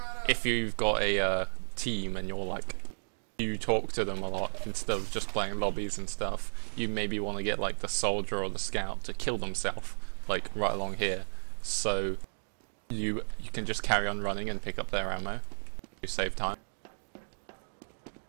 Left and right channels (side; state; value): left; silent; digital silence